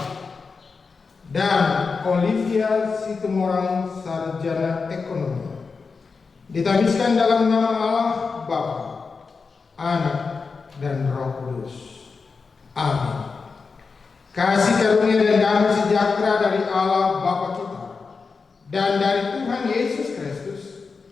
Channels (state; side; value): quieter; right; 4.8 dB